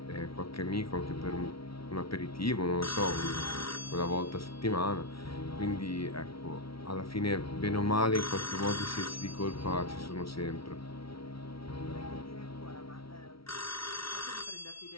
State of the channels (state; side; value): late; right; 0.75 ms